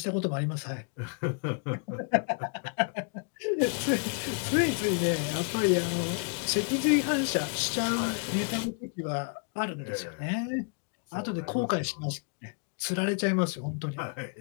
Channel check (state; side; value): quieter; right; 39.2 dB